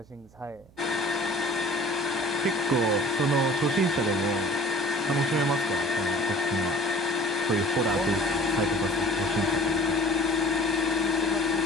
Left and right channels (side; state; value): right; noise; hum, 27 dB below the sound